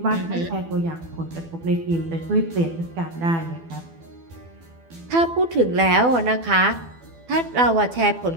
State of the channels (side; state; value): left; late; 12 ms